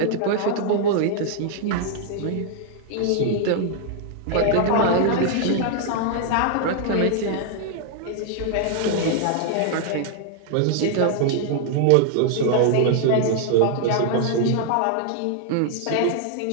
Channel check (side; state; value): both; different; correlation 0.00